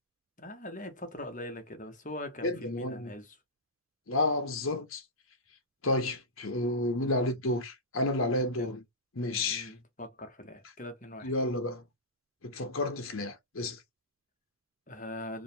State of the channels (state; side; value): normal; both; correlation -0.14